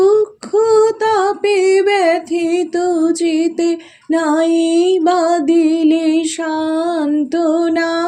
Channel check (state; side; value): identical; both; correlation 1.00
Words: তাপে ব্যথিত চিতে নাই বা দিলে সান্ত্বনা।